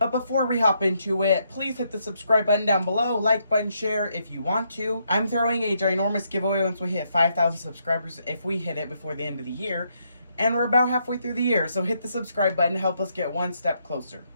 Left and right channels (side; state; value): both; inverted; correlation -0.76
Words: before we hop into it, please hit the subscribe button down below, like button, share if you want to. I'm throwing a ginormous giveaway once we hit 5,000 subscribers if we hit it before the end of the year. And we're about halfway through the year, so hit the subscribe button to help us get one step closer.